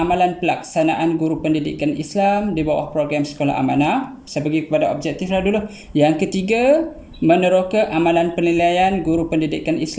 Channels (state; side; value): identical; both; correlation 1.00